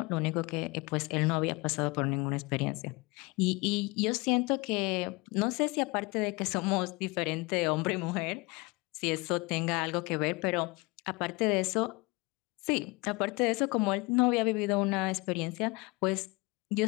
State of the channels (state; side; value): quieter; right; 25.7 dB